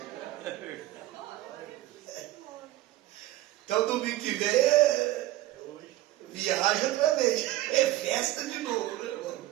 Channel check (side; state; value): left; quieter; 15.6 dB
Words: Então domingo que vem viaja outra vez. É festa de novo, né, irmão?